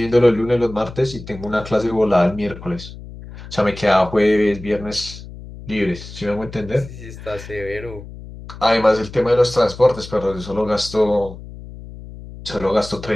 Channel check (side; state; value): left; noise; hum, 14 dB below the sound